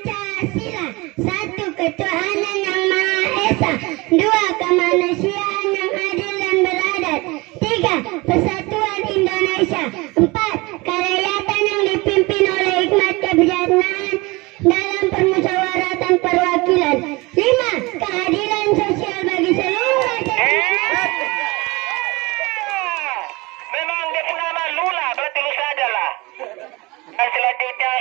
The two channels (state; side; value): quieter; left; 23.9 dB